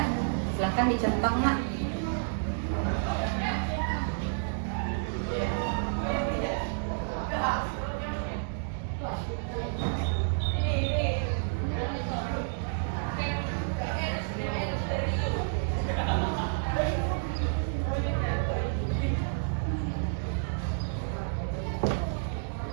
Silahkan dicentang nak.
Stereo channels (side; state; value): left; silent; digital silence